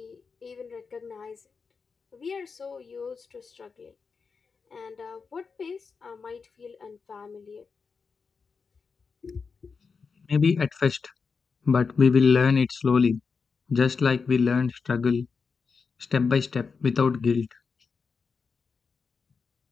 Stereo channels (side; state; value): right; quieter; 5.2 dB